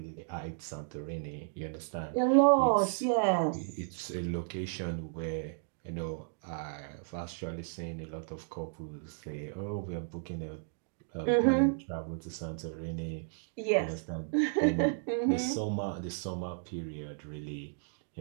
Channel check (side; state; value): left; silent; digital silence